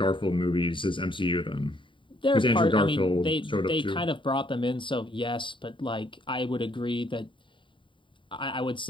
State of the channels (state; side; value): late; right; 0.24 ms